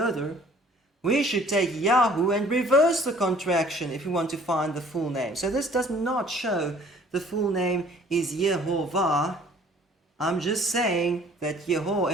We should take Yahu and reverse the contraction if we want to find the full name. So this does not show the full name is Yehovah. I'm just saying that Yeho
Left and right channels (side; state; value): both; normal; correlation 0.54